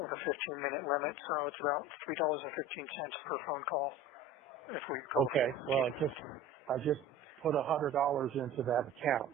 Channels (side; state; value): both; normal; correlation 0.38